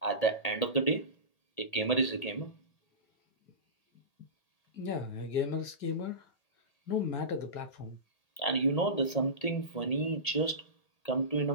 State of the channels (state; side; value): late; right; 1.8 ms